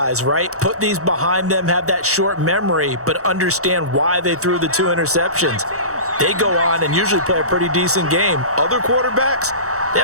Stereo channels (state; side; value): late; left; 0.65 ms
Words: right? Put these behind them, have that short memory, but understand why they threw the 2 interceptions. They go on and usually play a pretty decent game. Other quarterbacks, they